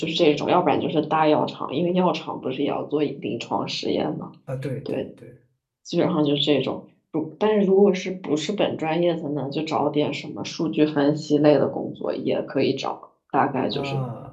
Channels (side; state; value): both; identical; correlation 1.00